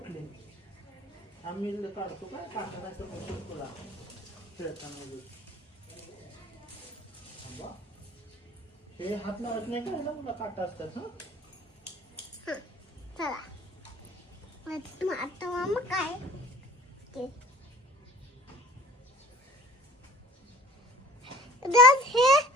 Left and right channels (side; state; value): both; normal; correlation 0.48